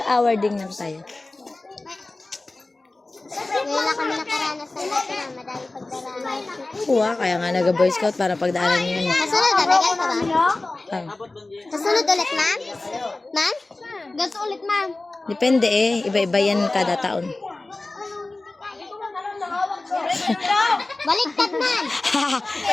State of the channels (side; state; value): right; quieter; 3.1 dB